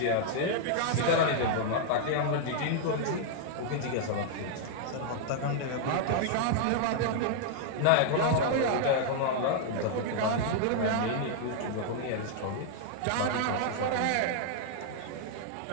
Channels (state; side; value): different; both; correlation -0.01